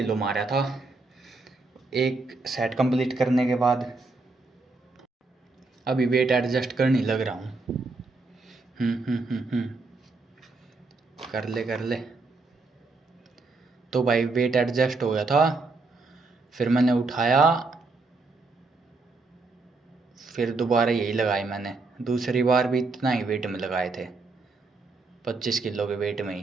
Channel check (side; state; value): left; quieter; 3.7 dB